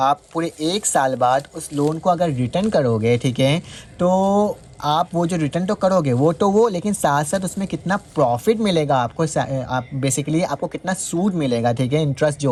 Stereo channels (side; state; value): both; identical; correlation 1.00